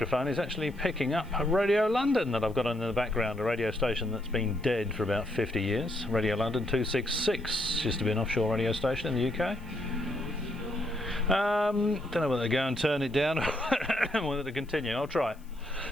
is actually picking up Radio London that I've got in the background, a radio station that's been dead for about 50 years. Radio London 266, used to be an offshore radio station in the UK. Don't know whether to go and turn it down or whether to continue. I'll try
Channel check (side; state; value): left; noise; hiss, 29 dB below the sound